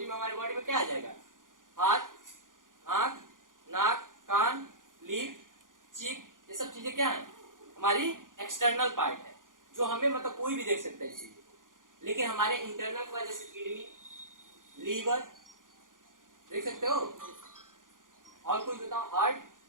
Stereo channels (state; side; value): late; left; 0.89 ms